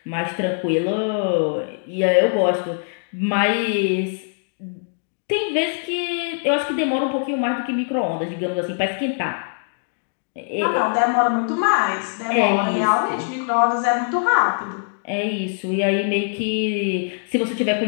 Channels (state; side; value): silent; right; digital silence